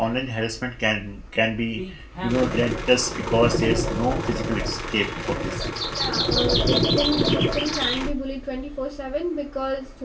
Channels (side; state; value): both; identical; correlation 1.00